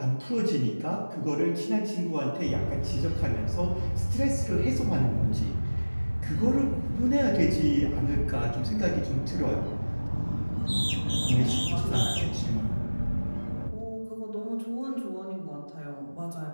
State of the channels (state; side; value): inverted; both; correlation -1.00